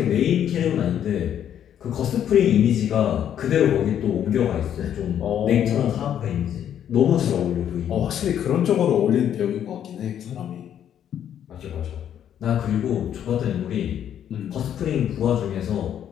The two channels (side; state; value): right; quieter; 9.8 dB